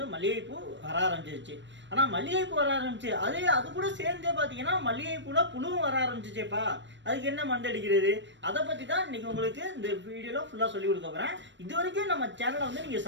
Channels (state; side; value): late; left; 0.53 ms